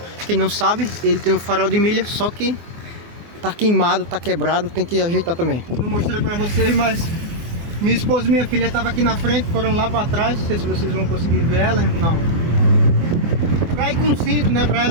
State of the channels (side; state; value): left; late; 24 ms